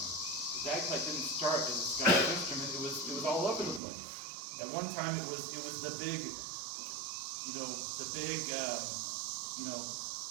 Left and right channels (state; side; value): drops out; left; at 3.8 s